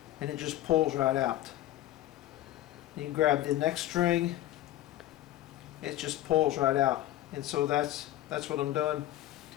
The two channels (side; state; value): right; quieter; 14.4 dB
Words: and it just pulls right out. You can grab the next string, it just pulls right out. And so that's what I'm doing.